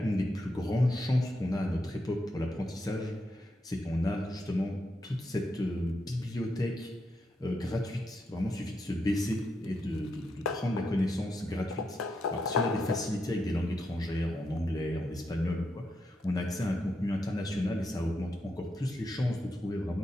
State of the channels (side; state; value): both; normal; correlation 0.83